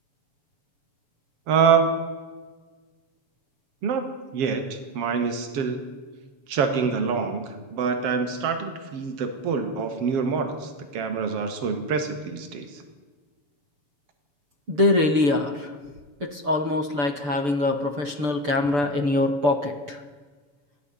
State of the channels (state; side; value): late; left; 6.9 ms